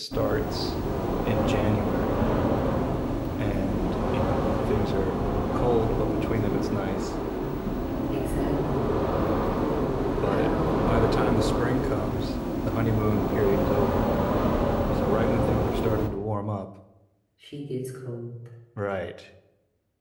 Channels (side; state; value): both; identical; correlation 1.00